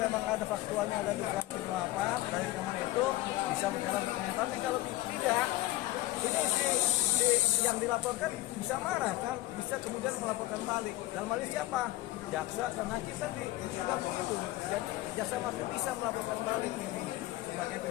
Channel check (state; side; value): quieter; right; 17.4 dB